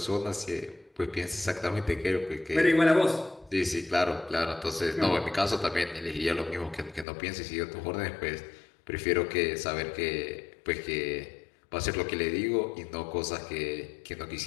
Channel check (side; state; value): right; drops out; at 7.1 s